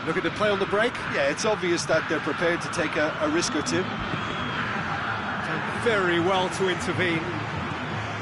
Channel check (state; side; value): identical; both; correlation 1.00